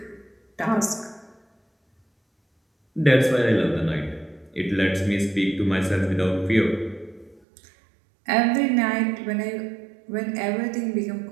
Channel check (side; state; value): left; drops out; at 7.4 s